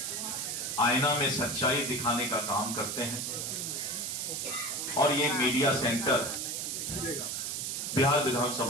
आईना में सच्चाई दिखाने का काम करते हैं। और ये मीडिया सेंटर बिहार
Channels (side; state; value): right; noise; hiss, 3 dB below the sound